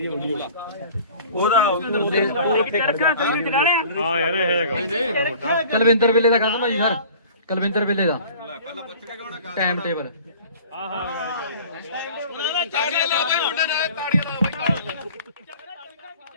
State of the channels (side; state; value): both; inverted; correlation -0.46